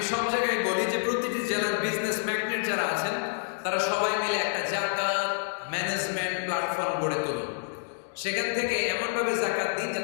সব জায়গায় বলি যে প্রতিটি জেলার বিজনেস ম্যাগনেট যারা আছেন, তারা সবাই মিলে একটা যাকাত ম্যানেজমেন্ট প্ল্যাটফর্ম গড়ে তুলুন। সেখান থেকে এমনভাবে যাকাত দিন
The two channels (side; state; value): right; silent; digital silence